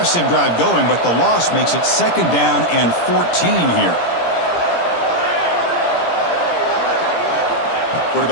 drive going, but the loss makes it 2nd down and 14 here.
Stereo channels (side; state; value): right; late; 17 ms